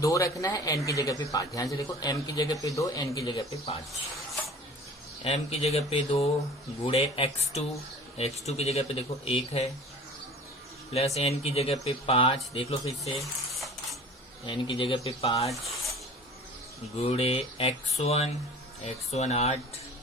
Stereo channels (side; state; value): both; normal; correlation 0.43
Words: रखना है, n की जगह पे 5। ध्यान से देखो, m की जगह पे 2, n की जगह पे 5। m की जगह पे 2 गुणे x2 की जगह पे देखो 1 है, प्लस n की जगह पे 5, देख लो फिर से, n की जगह पे 5 गुणे x1 8